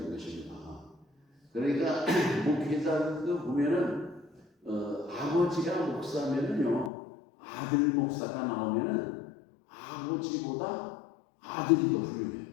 것입니다. 그러니까 목회자도 보면은 아버지가 목사면은요 아들 목사가 나오면은 아버지보다 아들이 더 훌륭해요.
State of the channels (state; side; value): drops out; right; at 6.9 s